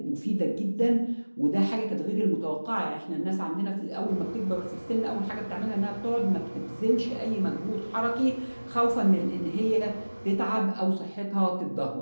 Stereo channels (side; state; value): both; inverted; correlation -1.00